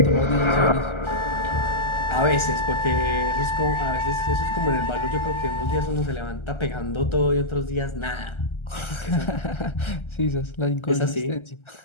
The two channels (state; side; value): late; right; 1.3 ms